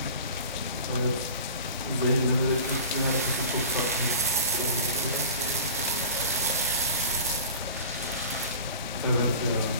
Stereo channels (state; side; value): inverted; both; correlation -0.38